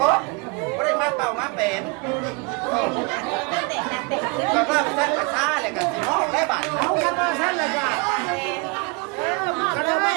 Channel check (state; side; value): quieter; left; 30.2 dB